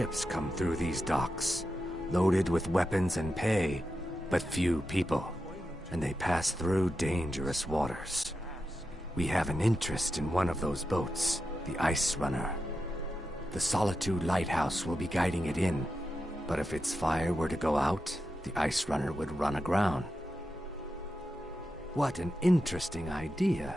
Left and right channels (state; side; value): normal; both; correlation 0.89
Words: come through these docks, loaded with weapons and pay, but few people, and they pass through dangerous waters. We have an interest in one of those boats, the Ice Runner. The Solitude Lighthouse will be guiding it in, but if its fire were to go out, the Ice Runner would run aground. What an interesting